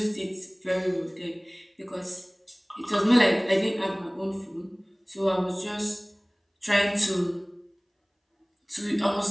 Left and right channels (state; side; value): identical; both; correlation 1.00